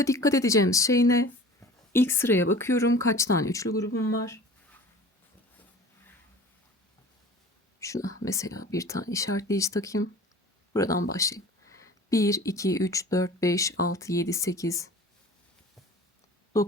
dikkat edeceğimiz şey ne? İlk sıraya bakıyorum. Kaç tane üçlü grubum var? Şuna mesela bir tane işaretleyici takayım. Buradan başlayayım. 1, 2, 3, 4, 5, 6, 7, 8,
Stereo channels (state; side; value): normal; both; correlation 0.42